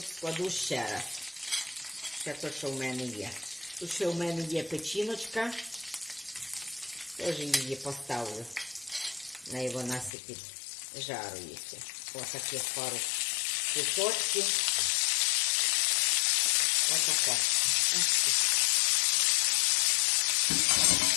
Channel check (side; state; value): right; drops out; at 10.1 s